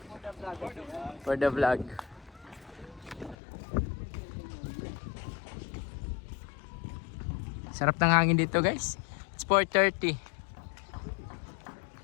For the vlog. Sarap ng hangin dito guys. It's 4:30.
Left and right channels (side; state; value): right; drops out; at 3.4 s